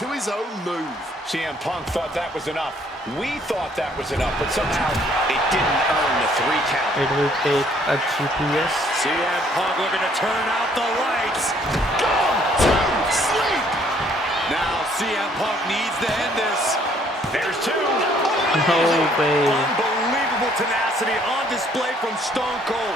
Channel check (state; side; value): normal; both; correlation 0.63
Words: to his own move. CM Punk thought that was enough. We thought that was enough, but somehow it didn't earn the 3 count. It will take a GPS. CM Punk looking to turn out the lights. Gone to sleep. Now CM Punk needs to end this. There's 2. No way. Unbelievable tenacity on display from Stone